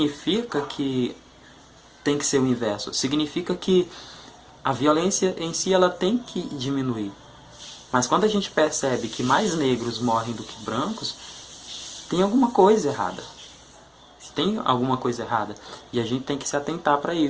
que tem que ser o inverso. Significa que a violência em si ela tem que diminuir. Mas quando a gente percebe que mais negros morrem do que brancos, tem alguma coisa errada. Tem alguma coisa errada. E a gente tem que se atentar para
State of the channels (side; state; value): both; identical; correlation 1.00